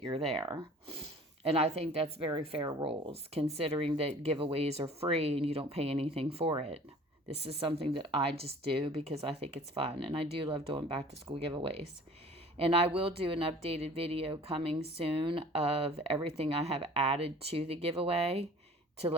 you're there. And I think that's very fair rules, considering that giveaways are free and you don't pay anything for it. This is something that I just do because I think it's fun, and I do love doing back to school giveaways. And I will do an updated video coming soon of everything I have added to the giveaway to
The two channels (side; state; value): both; normal; correlation 0.47